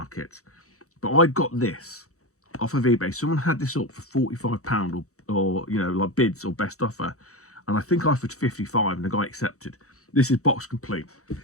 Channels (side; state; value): right; late; 0.65 ms